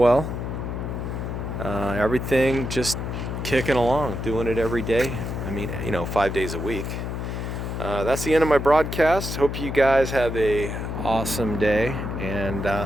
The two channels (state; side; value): noise; left; hum, 4 dB below the sound